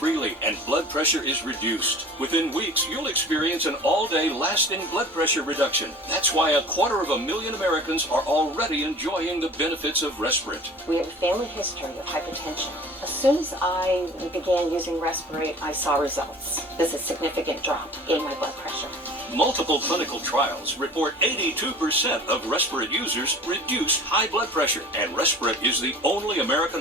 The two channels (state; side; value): normal; both; correlation 0.43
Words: and blood pressure is reduced. Within weeks, you'll experience an all-day lasting blood pressure reduction. That's why 250,000 Americans are already enjoying the benefits of Respirin. We have a family history of hypertension. As soon as I began using Respirin, I saw results. There's a significant drop in my blood pressure. Multiple clinical trials report 82% of Respirin users reduce high blood pressure, and Respirin is the only American